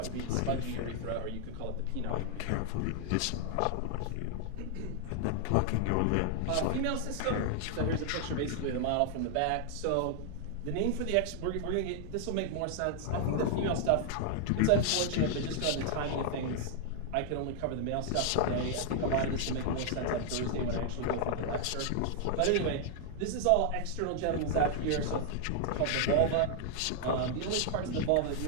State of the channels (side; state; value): both; different; correlation 0.00